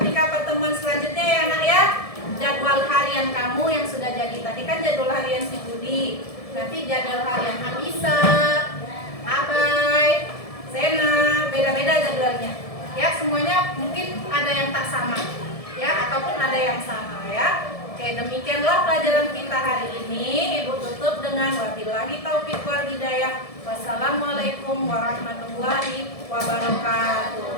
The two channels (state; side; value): late; right; 1.7 ms